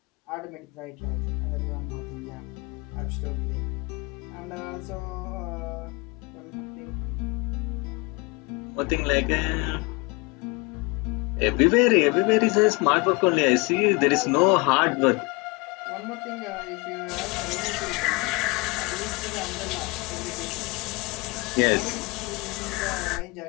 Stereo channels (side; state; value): right; quieter; 26.5 dB